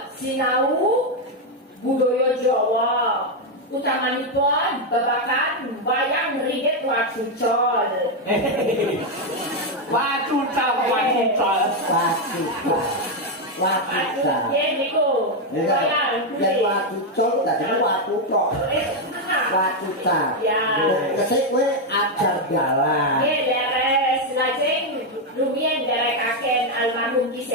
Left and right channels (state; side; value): normal; both; correlation 0.03